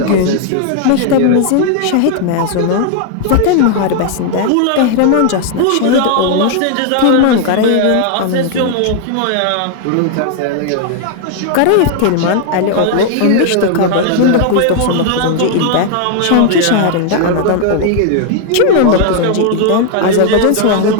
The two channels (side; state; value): both; different; correlation 0.00